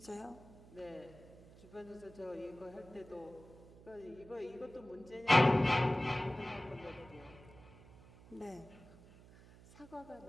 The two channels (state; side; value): noise; right; hum, 21 dB below the sound